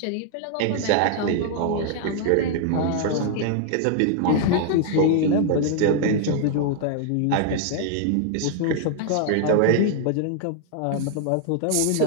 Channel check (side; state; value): both; different; correlation 0.00